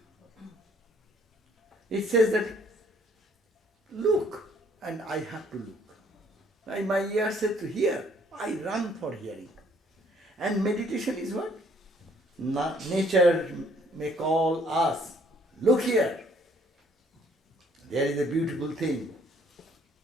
It says that, look, and I have to look. And my ear said to hear, I run for hearing. And meditation is what? Nature may call us, look here. There is a beautiful thing.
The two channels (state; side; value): normal; both; correlation 0.62